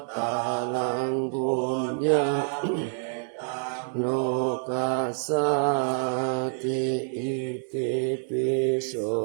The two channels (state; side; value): silent; left; 60 dB below the other